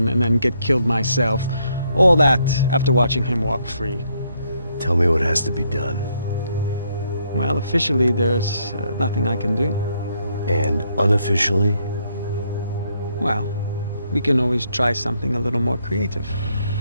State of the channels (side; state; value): both; inverted; correlation -0.73